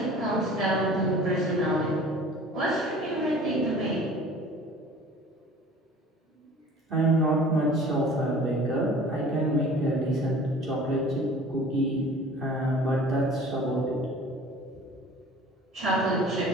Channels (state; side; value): normal; both; correlation 0.46